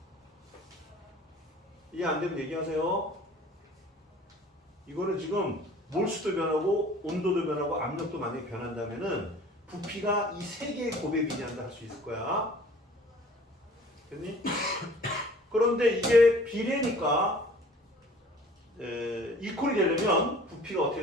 이해 안 되면 얘기하세요. 이거는 지금 몰수도 변하고 온도도 변하고 압력도 만약에 변한다면은 부피가 이 세 개의 곱에 비례한다 할 수 있을 거야. 됐니? 그런데 이게 비례니까 이퀄이 되려면 부피가 어떻게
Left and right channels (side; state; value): both; normal; correlation 0.49